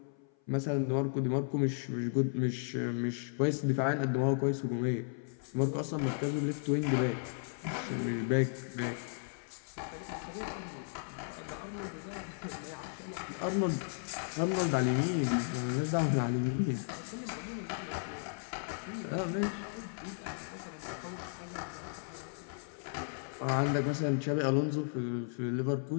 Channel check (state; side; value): silent; right; 54 dB below the other